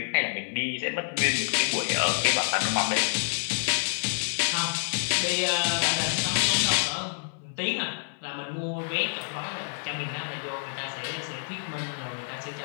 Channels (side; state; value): right; silent; digital silence